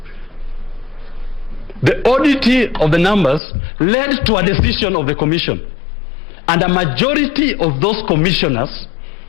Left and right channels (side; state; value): right; drops out; at 3.4 s